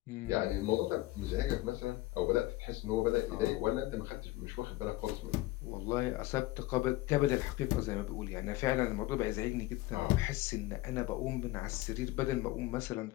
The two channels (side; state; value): right; quieter; 18.5 dB